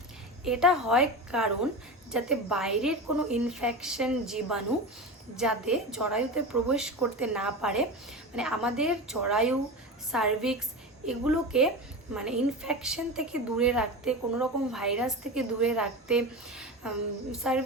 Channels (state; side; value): normal; both; correlation 0.25